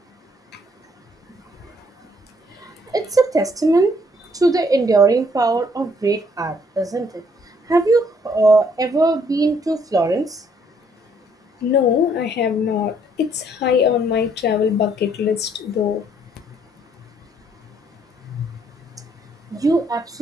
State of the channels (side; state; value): both; normal; correlation 0.66